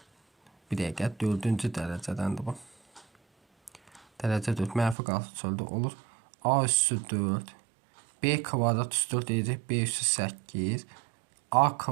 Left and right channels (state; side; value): drops out; left; at 5.0 s